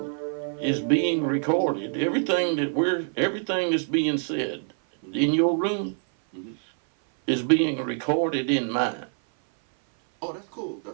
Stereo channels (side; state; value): left; silent; 58 dB below the other